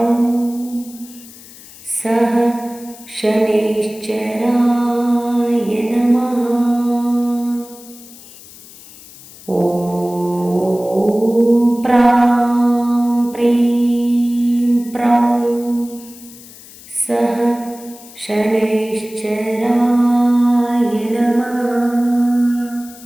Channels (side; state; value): left; noise; hiss, 20 dB below the sound